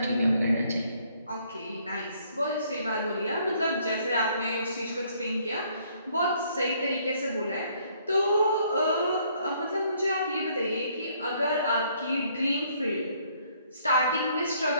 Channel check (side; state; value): both; inverted; correlation -0.65